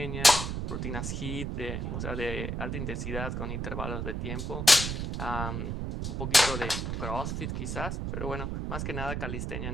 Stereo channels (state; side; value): noise; right; rumble, 2 dB below the sound